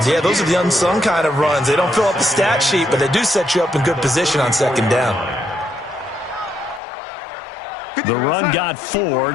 Yeah, those are the unsung kind of runs. They don't fill up the stat sheet, but they do set you up in good position on 2nd down. The run got 4.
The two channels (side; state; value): right; drops out; at 6.8 s